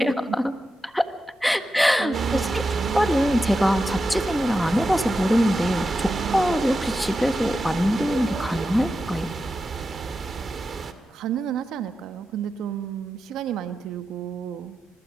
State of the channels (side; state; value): both; normal; correlation 0.90